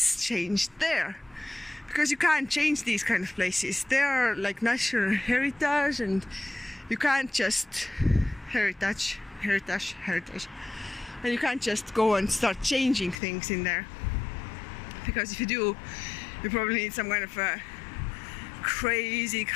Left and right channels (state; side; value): drops out; right; at 13.2 s